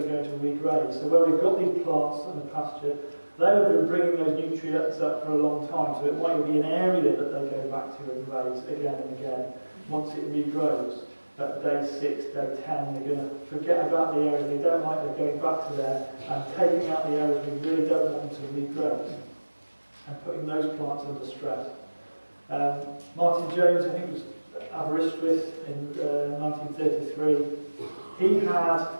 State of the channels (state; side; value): inverted; both; correlation -1.00